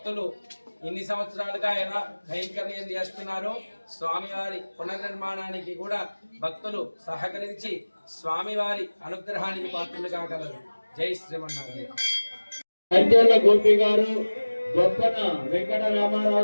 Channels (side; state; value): both; inverted; correlation -1.00